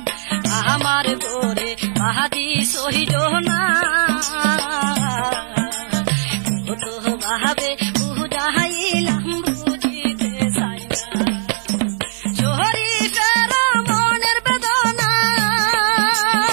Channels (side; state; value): left; silent; digital silence